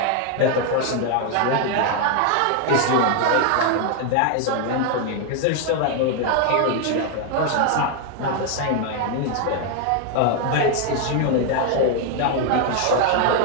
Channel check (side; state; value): both; different; correlation 0.00